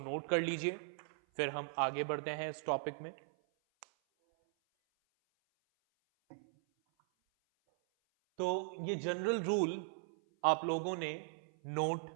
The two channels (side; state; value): left; silent; 52 dB below the other